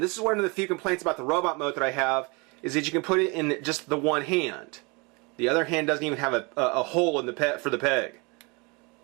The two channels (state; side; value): quieter; left; 28.9 dB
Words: this is one of the few complaints about the robot mode that I have, is that you can put it in just the one hand. The other hand doesn't even have a hole in the for the peg.